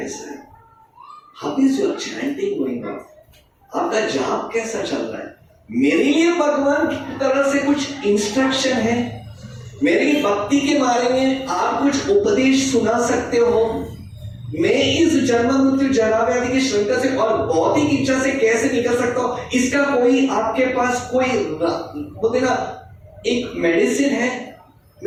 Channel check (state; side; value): identical; both; correlation 1.00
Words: है, how is your chanting going on, आपका जाप कैसा चल रहा है। मेरे लिए भगवान की तरफ से कुछ इंस्ट्रक्शन है, मेरी भक्ति के बारे में आप कुछ उपदेश सुना सकते हो, मैं इस जन्म मृत्यु जरा व्याधि की श्रृंखला से और भौतिक इच्छा से कैसे निकल सकता हूं, इसका कोई आपके पास कोई बोलते ना एक मेडिसिन है